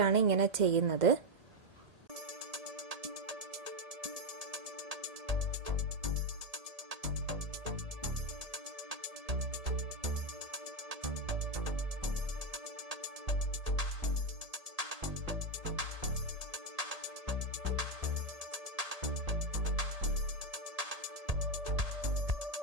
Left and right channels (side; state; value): left; late; 1.8 ms